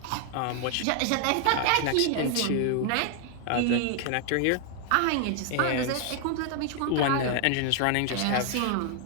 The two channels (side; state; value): both; different; correlation 0.00